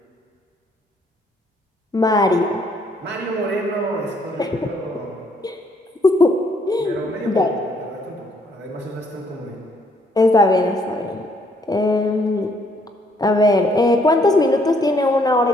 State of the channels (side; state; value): both; normal; correlation 0.67